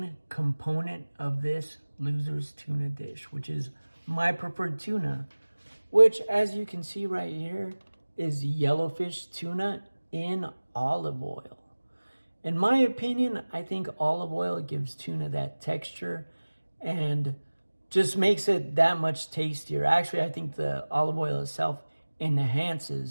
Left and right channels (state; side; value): inverted; both; correlation -1.00